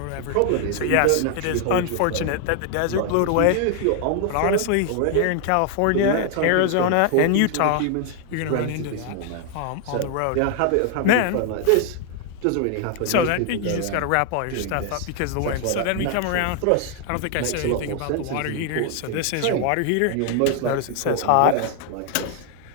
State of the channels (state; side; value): different; both; correlation 0.00